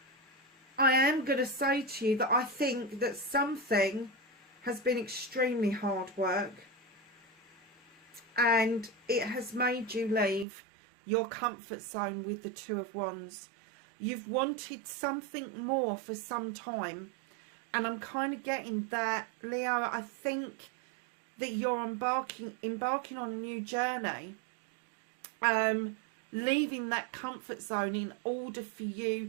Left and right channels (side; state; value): left; drops out; at 10.5 s